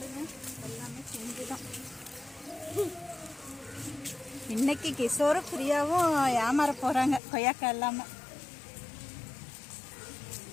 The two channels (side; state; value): right; drops out; at 7.2 s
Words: எல்லாமே பிஞ்சுதான். இன்னைக்கு கிஷோரும் பிரியாவும் ஏமாற போறாங்க கொய்யாக்காய் இல்லாம.